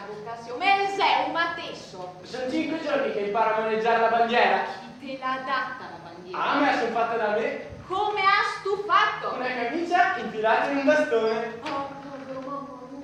vocazione, ma sei un matesso. Sono 5 giorni che imparo a maneggiare la bandiera. Chi te l'ha data la bandiera? Ah, me la sono fatta da me. Come has tu fatto? Una camicia infilata in un bastone. Oh, povero mamma.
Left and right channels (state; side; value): identical; both; correlation 1.00